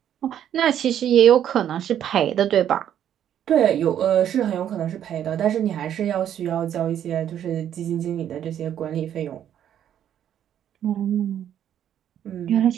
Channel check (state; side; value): quieter; left; 10.1 dB